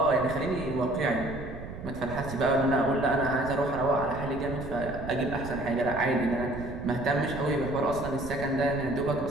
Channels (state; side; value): noise; right; rumble, 11 dB below the sound